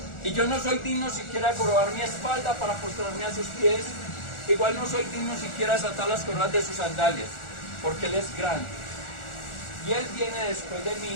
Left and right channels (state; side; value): late; right; 1.4 ms